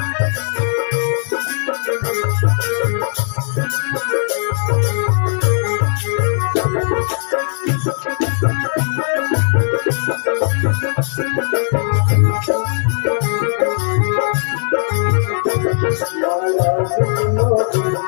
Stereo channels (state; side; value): silent; right; digital silence